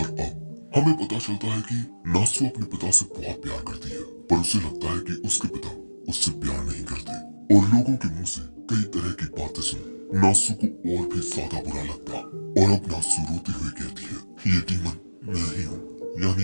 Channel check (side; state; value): both; inverted; correlation -1.00